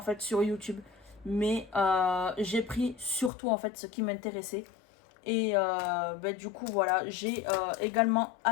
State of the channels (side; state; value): right; drops out; at 3.3 s